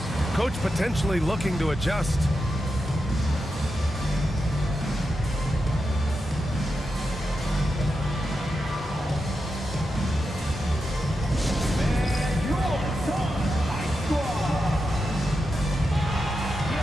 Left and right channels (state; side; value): normal; both; correlation 0.88